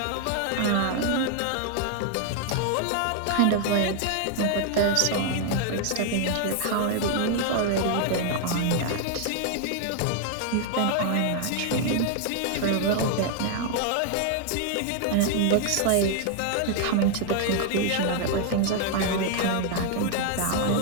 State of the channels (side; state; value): both; different; correlation 0.00